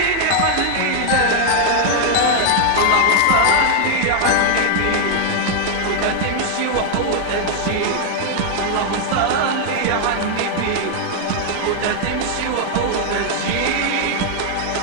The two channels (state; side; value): different; both; correlation 0.00